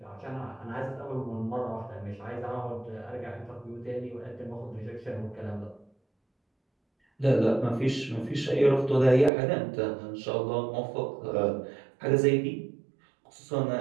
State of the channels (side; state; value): left; drops out; at 9.3 s